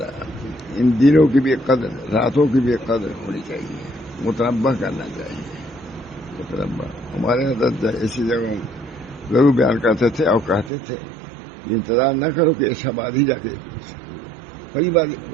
ان دنوں کی بھی قدر، راتوں کی بھی قدر ہونی چاہیے، متنبع کرنا چاہیے، متنبع۔ ہمارے حضرت ایسی جگہوں ضرور بیان کرتے تھے اور کہتے تھے یہ انتظار نہ کرو کہ ایسا بعد ہی جا کے پہلی بار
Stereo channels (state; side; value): drops out; left; at 10.7 s